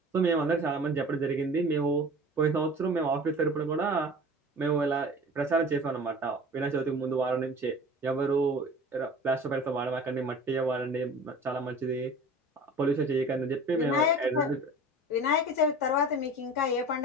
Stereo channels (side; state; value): both; normal; correlation 0.40